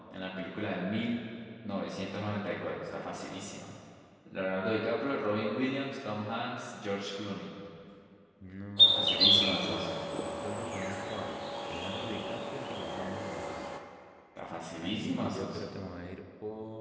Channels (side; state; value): both; identical; correlation 1.00